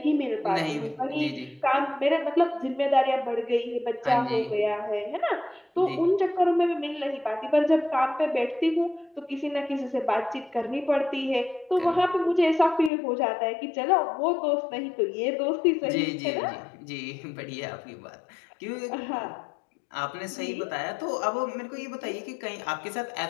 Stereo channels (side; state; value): right; drops out; at 12.9 s